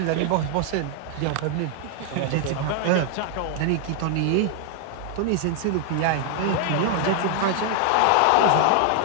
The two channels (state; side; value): different; both; correlation 0.00